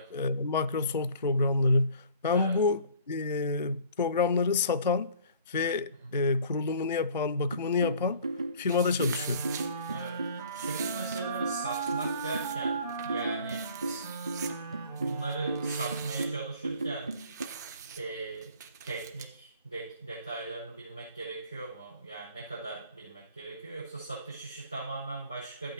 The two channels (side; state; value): both; inverted; correlation -0.51